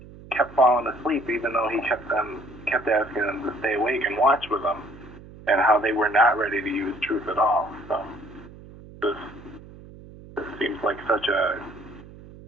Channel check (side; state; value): right; noise; hum, 18 dB below the sound